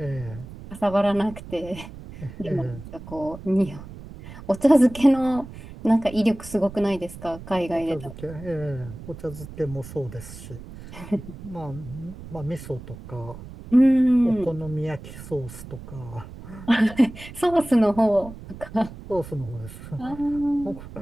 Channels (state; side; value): noise; right; rumble, 14 dB below the sound